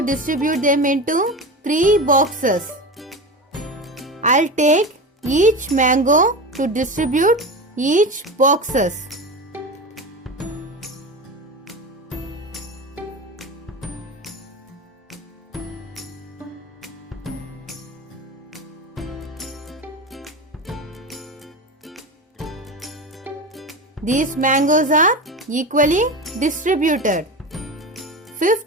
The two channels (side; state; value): both; normal; correlation 0.25